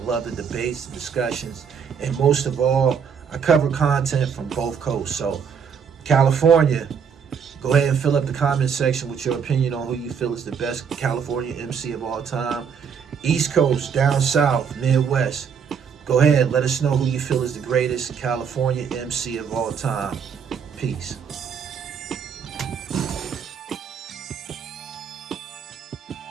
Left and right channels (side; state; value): left; quieter; 6.9 dB